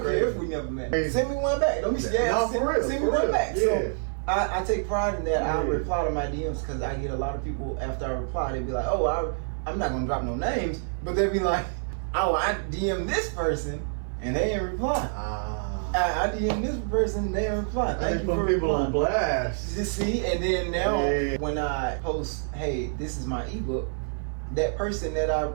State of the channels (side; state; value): left; silent; 56 dB below the other